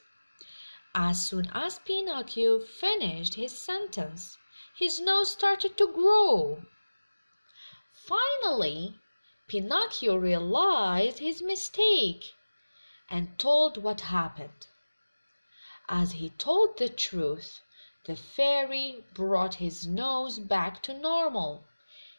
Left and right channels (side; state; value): both; inverted; correlation -1.00